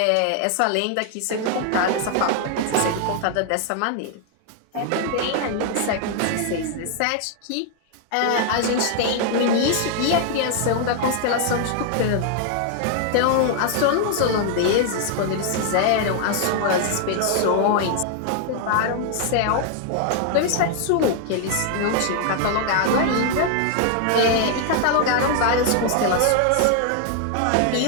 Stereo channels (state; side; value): different; both; correlation 0.00